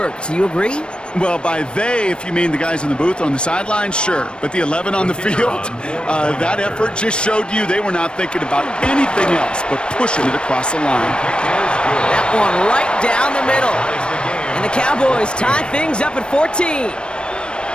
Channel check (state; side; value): late; right; 0.055 ms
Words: Do you agree? Well, by they, if you mean the guys in the booth on the sideline, sure. But the 11 on the field, that effort just showed you they were not thinking about anything else but pushing it across the line. That one right down the middle. And the Cowboys tie things up at 14.